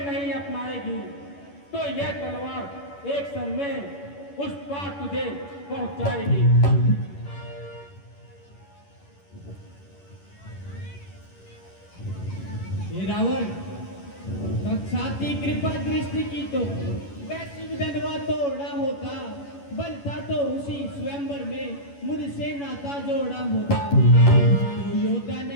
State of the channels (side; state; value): right; late; 11 ms